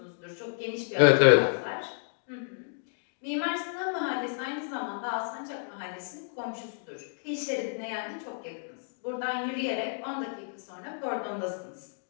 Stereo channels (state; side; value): silent; right; digital silence